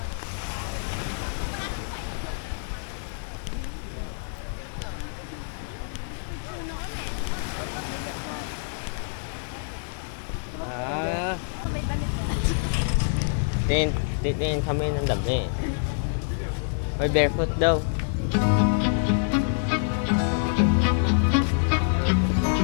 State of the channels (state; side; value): silent; right; digital silence